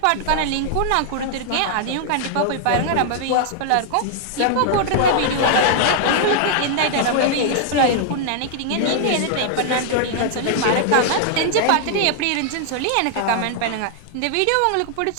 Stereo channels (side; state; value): both; different; correlation 0.00